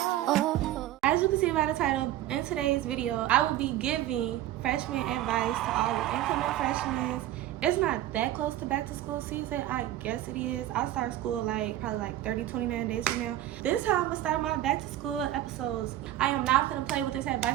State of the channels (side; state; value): left; quieter; 13.5 dB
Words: As you can see by the title, in today's video, I will be giving freshman advice to all the incoming freshmen. It's not that close to back to school season. I guess it is. I'll start school probably 29 days from now. This is how I'm gonna start my back to school episodes. I am not gonna play with this